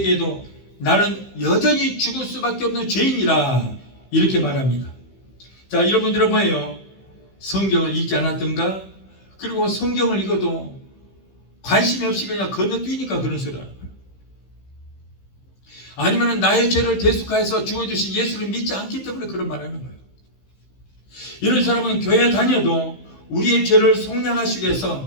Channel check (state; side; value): late; right; 15 ms